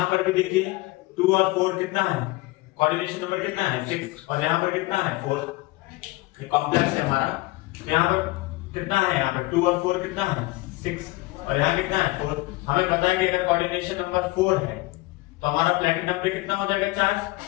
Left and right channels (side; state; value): right; quieter; 20.7 dB